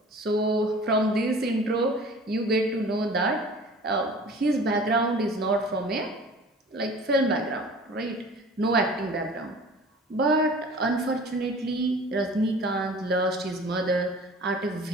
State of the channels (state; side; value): normal; both; correlation 0.44